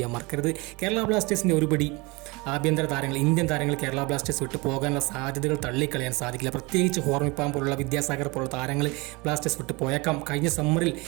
മറക്കരുത്. കേരള ബ്ലാസ്റ്റേഴ്സിൻ്റെ ഒരുപടി ആഭ്യന്തര താരങ്ങൾ, ഇന്ത്യൻ താരങ്ങൾ കേരള ബ്ലാസ്റ്റേഴ്സ് വിട്ട് പോകാനുള്ള സാധ്യതകൾ തള്ളിക്കളയാൻ സാധിക്കില്ല. പ്രത്യേകിച്ച് ഹോർമിപ്പാം പോലുള്ള, വിദ്യാസാഗർ പോലുള്ള താരങ്ങൾ ബ്ലാസ്റ്റേഴ്സ് വിട്ട് പോയേക്കാം. കഴിഞ്ഞ സമ്മറിൽ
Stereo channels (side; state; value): left; quieter; 25.9 dB